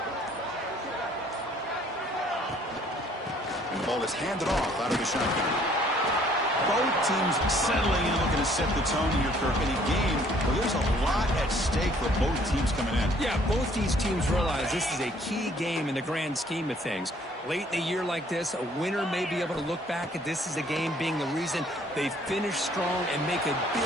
And the ball is handed off out of the shotgun. Both teams settling in, looking to set the tone here, Kirk, in a game where there's a lot at stake for both teams coming in. Yeah, both these teams realize this is a key game in the grand scheme of things. Late in a year like this, a winner may be able to look back at this as a game being the reason they finish strong and make a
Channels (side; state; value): both; normal; correlation 0.60